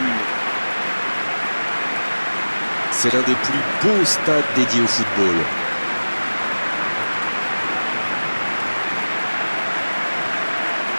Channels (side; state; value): both; inverted; correlation -1.00